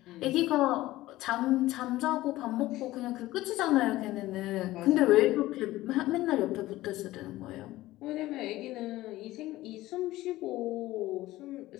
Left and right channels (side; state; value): right; quieter; 16.9 dB